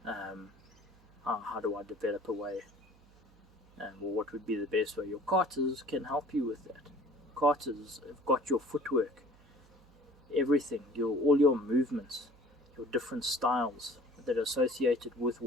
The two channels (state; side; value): noise; right; hum, 28 dB below the sound